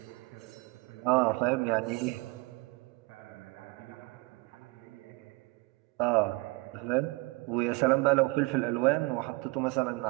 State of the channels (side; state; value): left; quieter; 25.3 dB